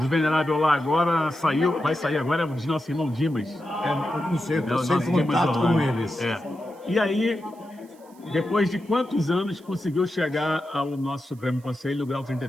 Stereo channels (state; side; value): noise; right; hiss, 29 dB below the sound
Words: O venerável lá agora saiu, vai sair agora, é o de nosso irmão Dimas. Eu não sei, eu É, o estou nosso sem Dimas contato Orlando. com eles. É. E aí, depois de quantos anos conseguiu chegar ao nosso Supremo Conselho, grau